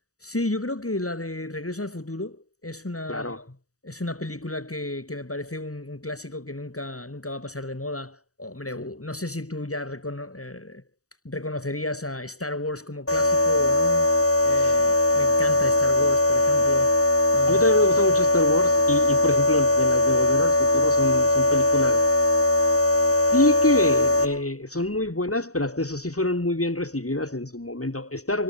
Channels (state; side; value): late; right; 0.66 ms